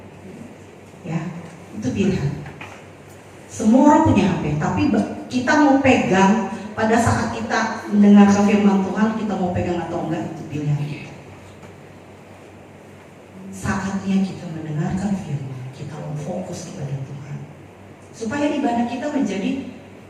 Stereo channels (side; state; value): both; identical; correlation 1.00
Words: ya, itu pilihan. Semua orang punya HP, tapi kita mau pegang pada saat kita mendengarkan firman Tuhan, kita mau pegang atau enggak, itu pilihan kita. Saatnya kita mendengarkan firman, kita mau fokus kepada Tuhan, supaya ibadah kita menjadi